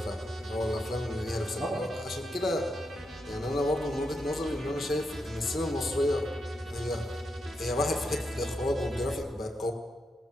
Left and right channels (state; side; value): normal; both; correlation 0.84